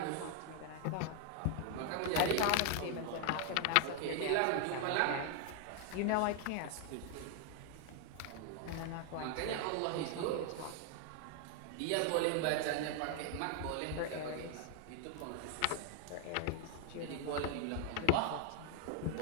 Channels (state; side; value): different; both; correlation 0.00